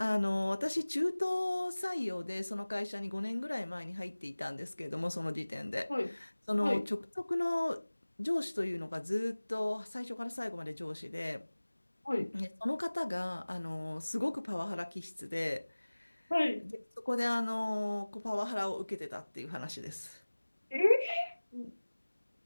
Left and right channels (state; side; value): inverted; both; correlation -1.00